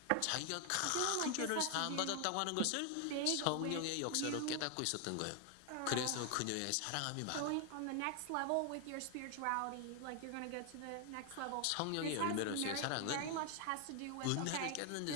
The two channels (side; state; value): both; different; correlation 0.00